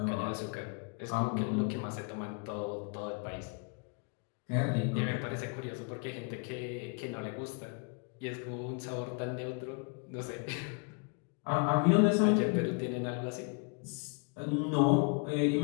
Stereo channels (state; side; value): quieter; right; 35.7 dB